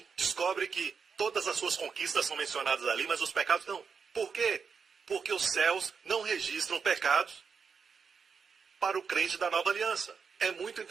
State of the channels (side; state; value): left; quieter; 5.9 dB